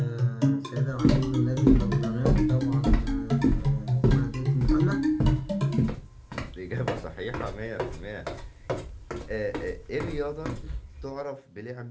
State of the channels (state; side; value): identical; both; correlation 1.00